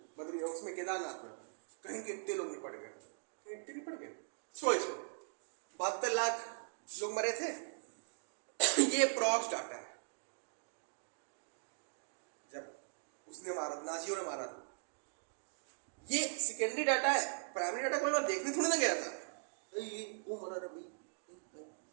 बद्री, उसमें केदारनाथ में, कहीं के इतने लोग नहीं पड़ गए, इतने नहीं पड़ गए, 72 लाख लोग मरे थे। ये प्रॉक्स डाटा है, जब उसने मारा, नाजियों ने मारा था। ये सेकेंडरी डाटा है। प्राइमरी डाटा कोई बार देखने थोड़ा ना गया था, ये वो मरा था भाई,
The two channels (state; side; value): silent; left; digital silence